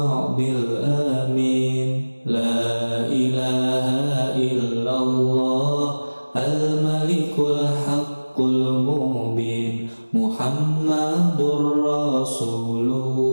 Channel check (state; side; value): inverted; both; correlation -1.00